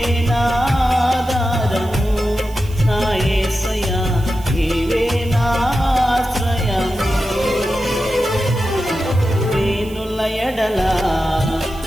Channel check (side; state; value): right; noise; hiss, 21 dB below the sound